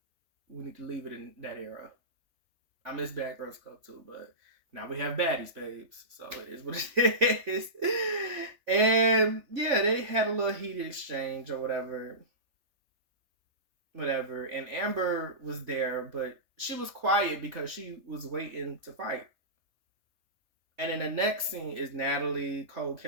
We need to leave it in that era. I miss Bad Girls Club too, but now we have Baddies, babes. So it is what it is. And yeah, they had a little heated exchange or whatever. And Amber was there, but she was quiet because she was waiting to fight. And then the next scene is Natalie, Cold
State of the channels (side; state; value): left; late; 3.5 ms